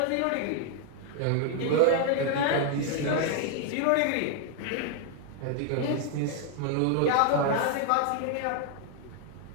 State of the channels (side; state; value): both; different; correlation 0.00